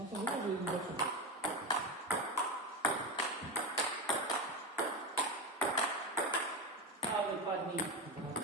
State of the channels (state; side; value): normal; both; correlation 0.17